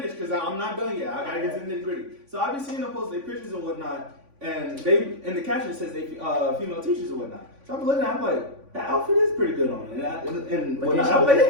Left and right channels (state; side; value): late; left; 3.5 ms